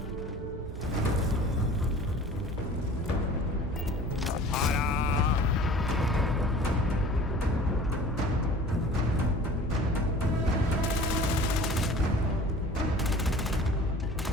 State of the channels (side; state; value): both; normal; correlation 0.44